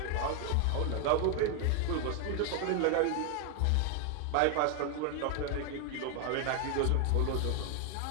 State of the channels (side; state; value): both; different; correlation 0.01